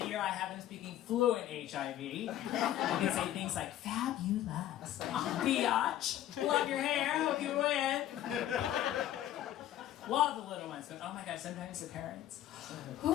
year, I have them speaking fluent HIV. You can say things like, fabulous, biatch, love your hair, hope you win. Love the little ones, but oh my gosh, sometimes the parents.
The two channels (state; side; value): quieter; right; 12.7 dB